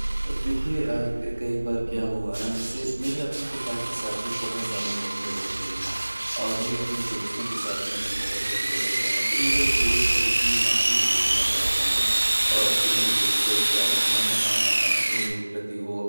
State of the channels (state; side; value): inverted; both; correlation -1.00